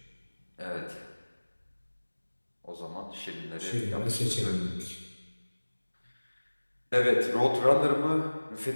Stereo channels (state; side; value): inverted; both; correlation -1.00